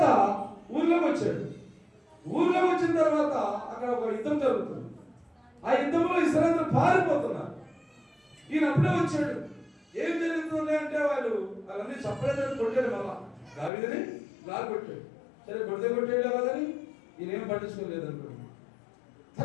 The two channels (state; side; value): drops out; right; at 13.7 s